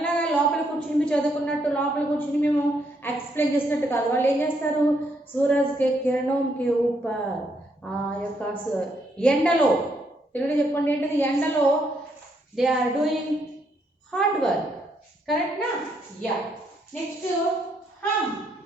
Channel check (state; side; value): normal; both; correlation 0.74